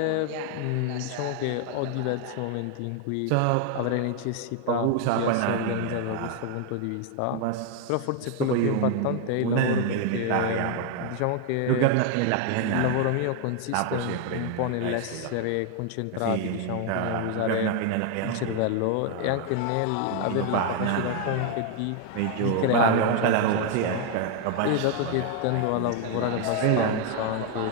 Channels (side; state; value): both; different; correlation 0.00